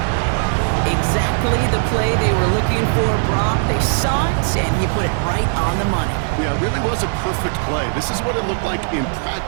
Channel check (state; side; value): silent; left; 67 dB below the other